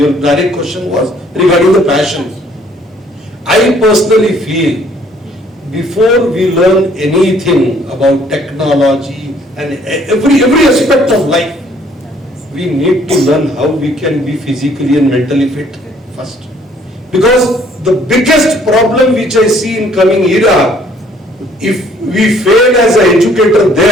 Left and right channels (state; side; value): normal; both; correlation 0.61